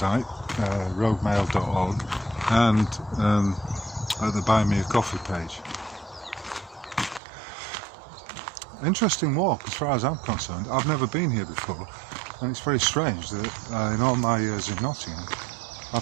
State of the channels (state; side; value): drops out; left; at 7.2 s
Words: roadmail.org, and at the Buy Me a Coffee page. Interesting walk as far as I'm concerned. I've never been here before, and it's very strange that in all my years in Nottingham